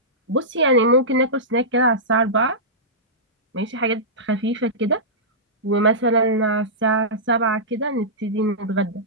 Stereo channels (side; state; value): both; normal; correlation -0.16